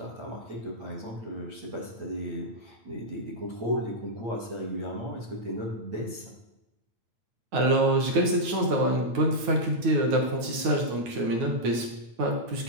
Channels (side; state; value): left; late; 9.2 ms